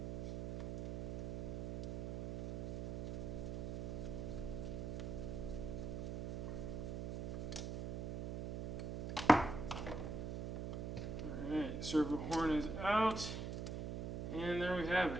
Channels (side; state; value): right; noise; hum, 2 dB below the sound